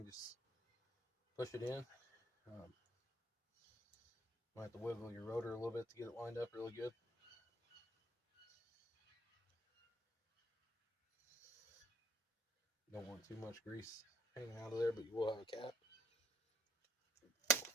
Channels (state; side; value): normal; both; correlation 0.63